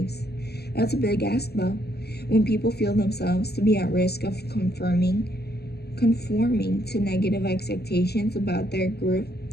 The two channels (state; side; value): late; right; 0.47 ms